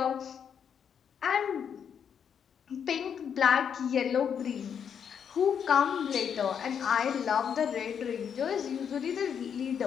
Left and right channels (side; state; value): right; quieter; 7.7 dB